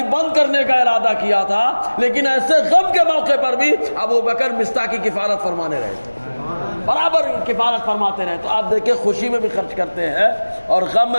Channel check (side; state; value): both; inverted; correlation -1.00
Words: بند کرنے کا ارادہ کیا تھا، لیکن ایسے غم کے موقع پر بھی ابوبکر مصطح کی کفالت فرمانے رہے تھے، برابر کفالت فرماتے رہے۔ تو آپ دیکھیں خوشی میں بھی خرچ کرتے ہیں اور غم